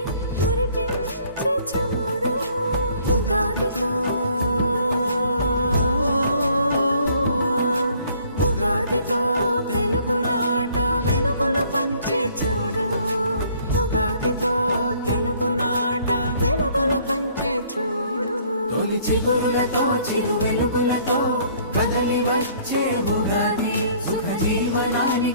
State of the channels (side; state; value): both; inverted; correlation -0.59